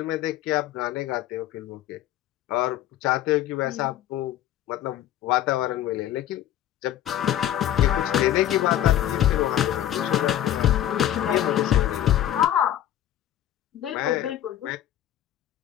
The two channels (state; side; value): quieter; right; 12.0 dB